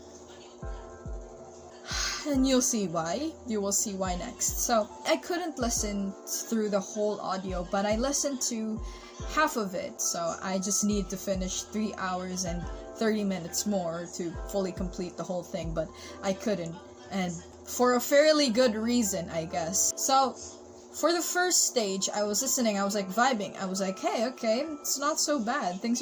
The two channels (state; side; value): identical; both; correlation 1.00